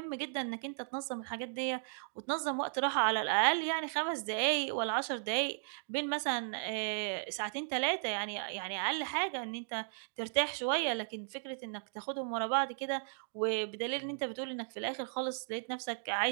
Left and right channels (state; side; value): silent; left; digital silence